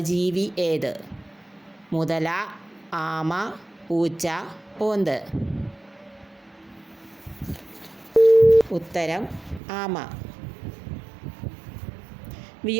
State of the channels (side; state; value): left; drops out; at 9.6 s